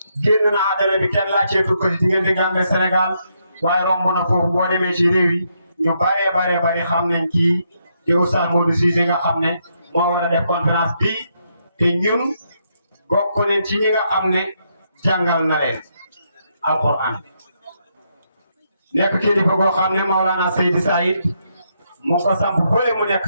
génn na hadara bi kenn laajteetul ko ci diggante Gambie Sénégal waaye romb na foofu boo demee ci réew yi ñu bari xam nañ kii te Oustaz Modou Cissé nga xam ne moo war a def conférence bi te ñun bokk nañ ci ñi nga xam ne jàngal na leen alquran nekk kilifa goo xam ne Maulana Seydi Saïd mu ko samp fële mu nekk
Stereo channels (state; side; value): inverted; both; correlation -0.78